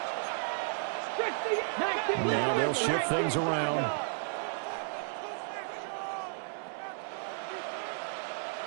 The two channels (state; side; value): silent; left; digital silence